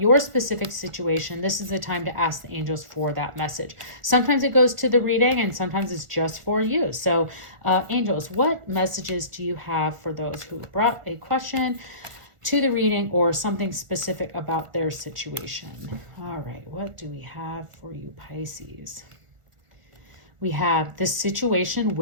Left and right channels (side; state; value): left; late; 1.4 ms